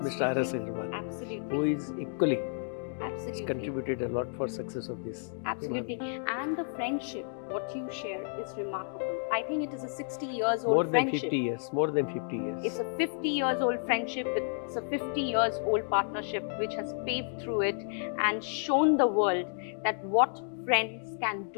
Mr. R.S. Agrawal, Absolutely. who is equally Absolutely. contributed a lot for success of this. Absolutely. And the friendship, what you share is remarkable. I think it is a 60 years old More than friendship. 50 years, more than 50 years. It's a 50 years old friendship, it's a 50 years old partnership which has paved through it and shown the world that what friends can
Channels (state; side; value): silent; right; digital silence